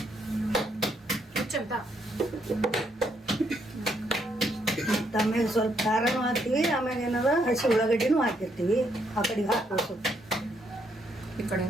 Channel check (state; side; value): normal; both; correlation 0.74